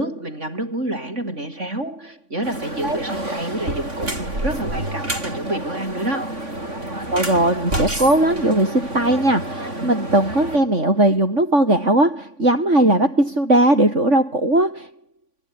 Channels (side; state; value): left; late; 3.5 ms